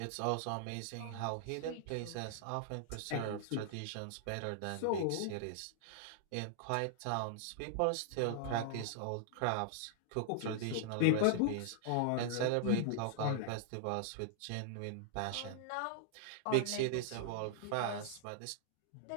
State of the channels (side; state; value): both; different; correlation -0.01